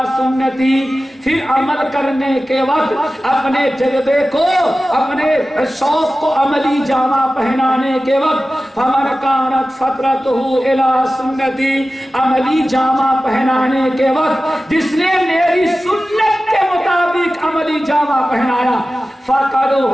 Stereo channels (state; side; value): normal; both; correlation 0.95